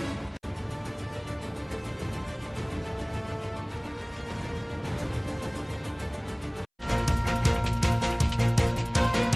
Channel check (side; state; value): both; identical; correlation 1.00